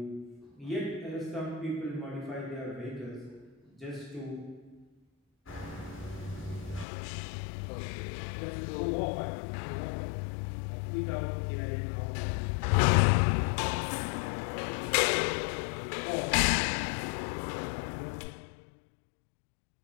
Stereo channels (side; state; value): right; drops out; at 6.9 s